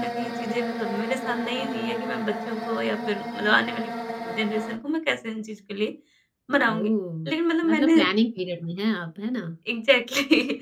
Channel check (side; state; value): both; identical; correlation 1.00